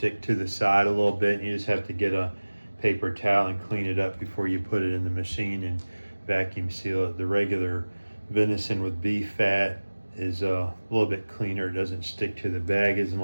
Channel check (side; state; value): both; inverted; correlation -1.00